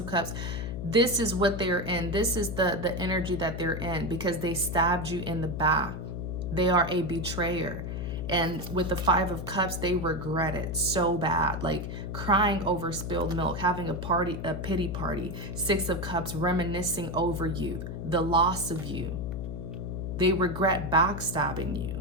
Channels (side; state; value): left; noise; hum, 5 dB below the sound